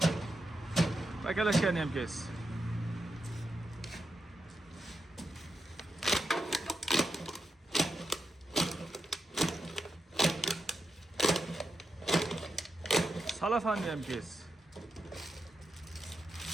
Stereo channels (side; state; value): both; normal; correlation 0.86